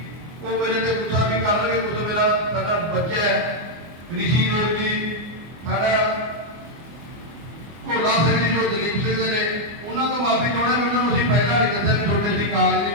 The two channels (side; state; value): left; late; 24 ms